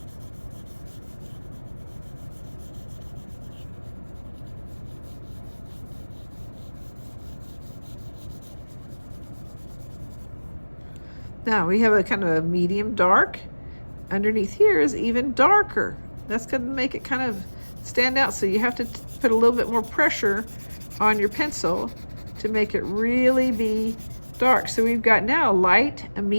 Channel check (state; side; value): inverted; both; correlation -1.00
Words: Now we have a kind of a medium dark. Underneath here is even darker. That's going to make it kind of stand out, so you have to put a little bit more pressure on your pencil to make it really be dark. So we've got now a light, a